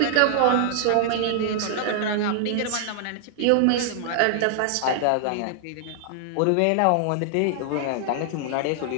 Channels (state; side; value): different; both; correlation 0.00